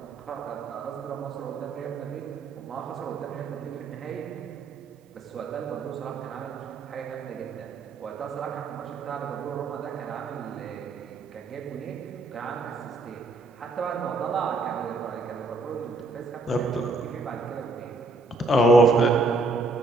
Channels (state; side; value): quieter; left; 3.3 dB